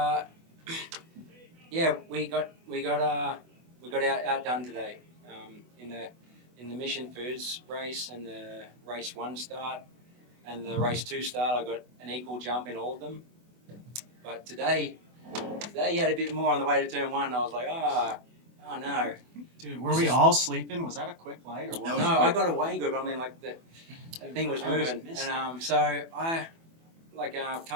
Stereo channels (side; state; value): left; late; 24 ms